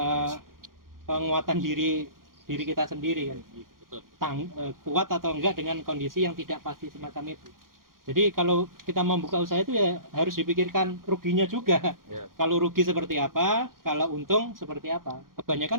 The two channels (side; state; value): left; late; 0.91 ms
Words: penguatan diri kita sendiri kan. betul. Kuat atau enggak dengan kondisi yang tidak pasti semacam itu. Jadi kalau kita membuka usaha itu ya harus dipikirkan ruginya juga. Ya. Kalau rugi seperti apa, kalau untung seperti apa.